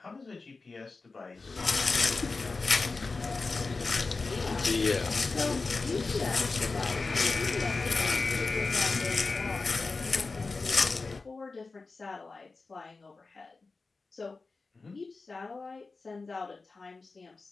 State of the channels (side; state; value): right; quieter; 3.9 dB